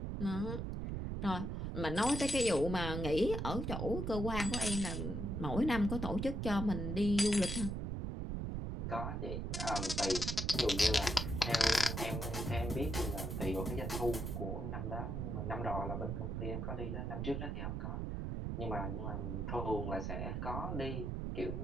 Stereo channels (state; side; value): noise; right; rumble, 2 dB below the sound